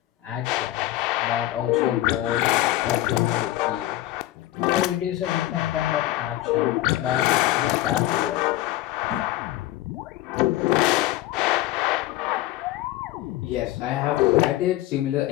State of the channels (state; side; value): quieter; right; 15.6 dB